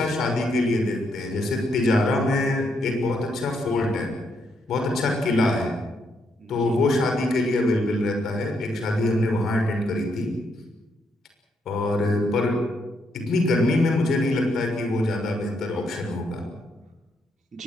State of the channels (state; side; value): normal; both; correlation 0.77